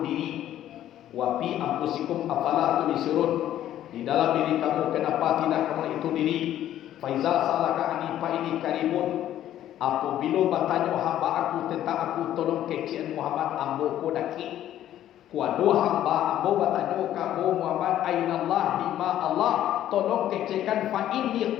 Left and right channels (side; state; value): right; quieter; 12.1 dB